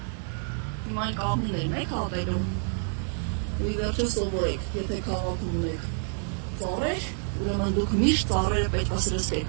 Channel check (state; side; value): silent; left; 58 dB below the other